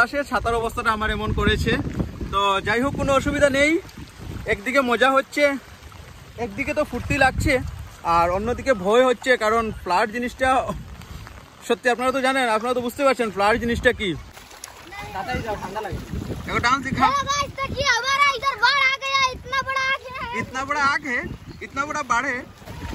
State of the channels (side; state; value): both; identical; correlation 1.00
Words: ছাতার অবস্থাটা আমার এমন করেছে। তো যাই হোক কোনো অসুবিধা নেই, একদিকে মজা হচ্ছে, একদিকে তো ফুর্তি লাগছে, আর অন্যদিকে ভয় হচ্ছে। কারণ ফ্লাড জিনিসটা সত্যি আপনারা তো জানেন, আপনারা তো বুঝতে পারছেন ফ্লাড জিনিসটা কি। डांस दिखा। इतना बड़ा आग है, इतना बड़ा बाढ़ है।